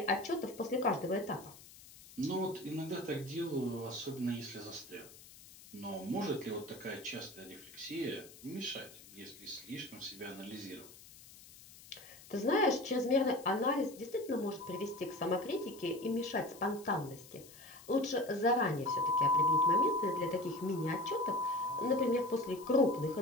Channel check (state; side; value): noise; left; hiss, 20 dB below the sound